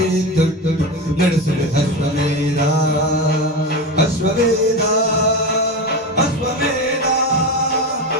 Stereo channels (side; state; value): both; normal; correlation 0.21